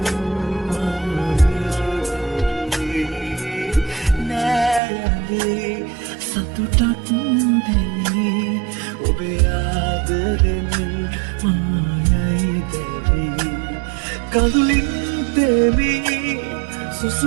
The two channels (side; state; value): left; drops out; at 4.8 s